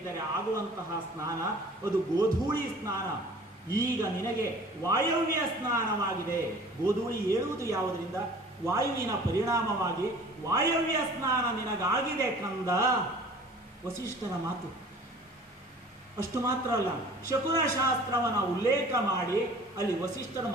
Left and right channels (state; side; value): normal; both; correlation 0.47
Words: ಆಗುವಂತಹ ಸ್ನಾನ, ಅದು ಗೋಧೂಳಿ ಸ್ನಾನ. ಈಗ ನಿನಗೆ ವಾಯವ್ಯ ಸ್ನಾನವಾಗಿದೆ. ಗೋಧೂಳಿ ಏಳುವುದು ಯಾವುದರಿಂದ? ವಾಯುವಿನ ಪರಿಣಾಮವಾಗಿ ವಾಯವ್ಯ ಸ್ನಾನ ನಿನಗಾಗಿದೆ ಕಂದ. ವಸಿಷ್ಠರ ಮಾತು. ಅಷ್ಟು ಮಾತ್ರ ಅಲ್ಲ, ಶಕುನ ಶಾಸ್ತ್ರವನ್ನ ಉಲ್ಲೇಖ ಮಾಡಿ ಅಲ್ಲಿ ವಸಿಷ್ಠರು